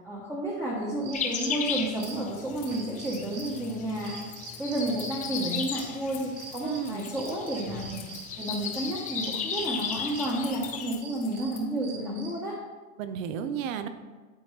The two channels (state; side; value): normal; both; correlation 0.30